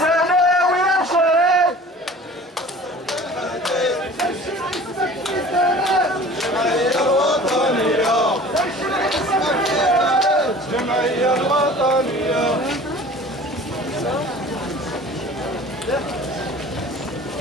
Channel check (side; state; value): both; normal; correlation 0.44